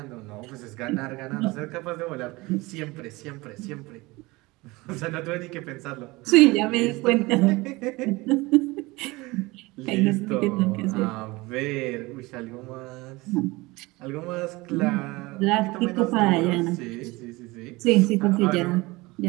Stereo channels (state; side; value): quieter; left; 22.3 dB